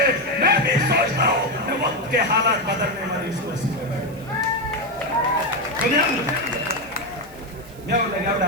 मैं भी सोचता हूँ वक्त के हालात बदलने वाली इस कुर्सी पे मैं लगा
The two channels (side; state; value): right; noise; hiss, 24 dB below the sound